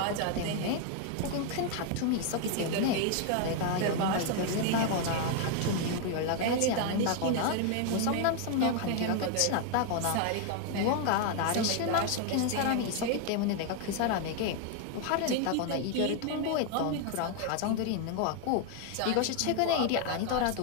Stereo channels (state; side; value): different; both; correlation 0.00